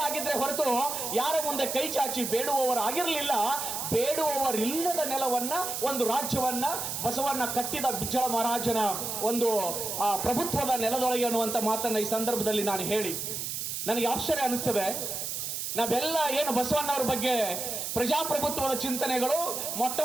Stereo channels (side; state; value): right; noise; hiss, 4 dB below the sound